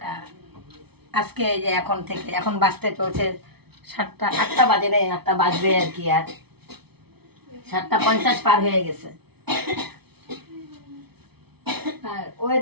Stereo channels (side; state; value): left; late; 0.97 ms